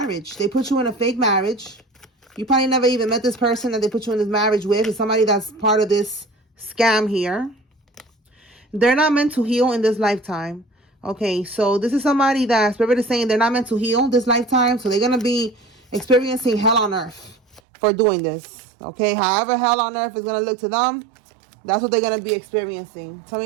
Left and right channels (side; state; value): left; drops out; at 17.6 s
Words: They put you in a fake marriage. You probably never even met this person that they put you in this marriage with. It's somebody that's part of this scam here. They're not meant to heal in this lifetime. Okay, so this is somebody that Spirit is saying they're not meant to heal this lifetime. So they're going to be experiencing hell on earth for doing this. Okay, however hell on earth is going to look to them, that's what they're going to be experiencing. Tell